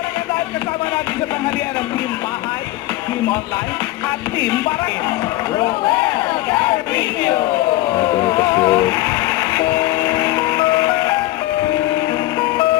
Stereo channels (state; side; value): quieter; right; 17.1 dB